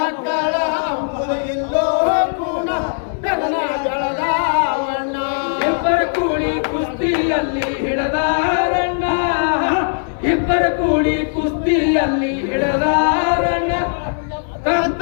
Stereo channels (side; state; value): right; silent; 60 dB below the other